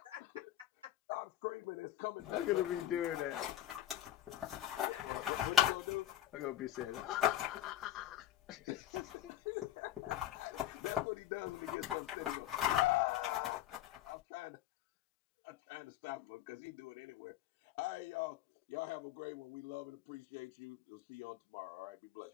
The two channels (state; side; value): quieter; right; 12.7 dB